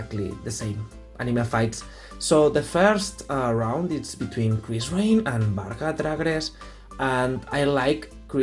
the same anime fights. So the first round is between Krysrain and Varga dragres, and I like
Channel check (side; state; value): both; identical; correlation 1.00